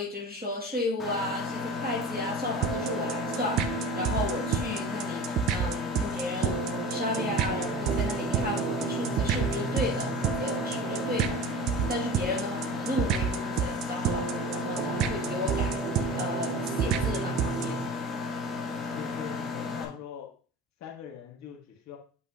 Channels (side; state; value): both; normal; correlation 0.35